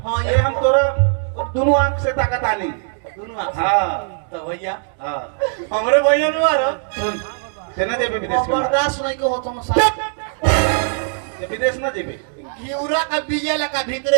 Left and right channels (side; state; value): left; silent; digital silence